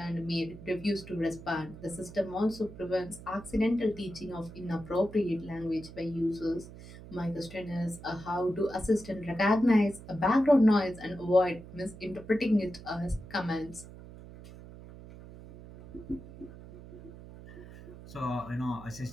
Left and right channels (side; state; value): right; noise; hum, 16 dB below the sound